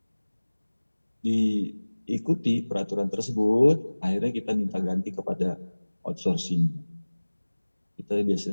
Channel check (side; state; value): both; inverted; correlation -1.00